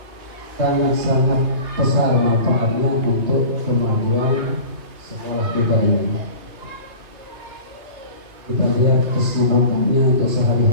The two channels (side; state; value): left; late; 2.6 ms